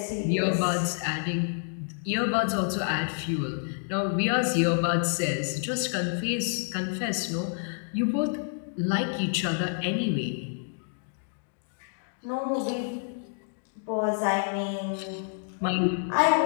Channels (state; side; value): silent; right; digital silence